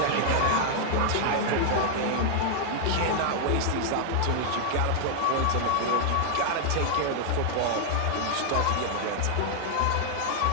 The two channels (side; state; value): both; different; correlation 0.00